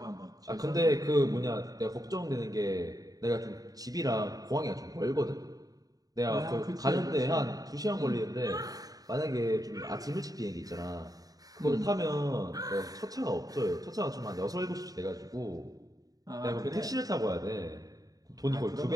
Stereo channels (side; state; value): left; late; 0.18 ms